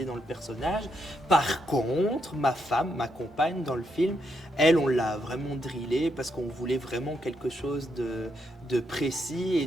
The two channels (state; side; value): normal; both; correlation 0.79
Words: dans le personnage. Par contre, ma femme, ma compagne dans le film, elle, on l'a vraiment drillée parce qu'on voulait vraiment quelque chose de précis et